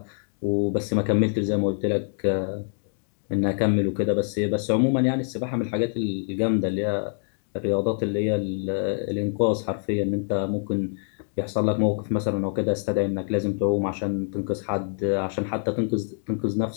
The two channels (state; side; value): silent; right; digital silence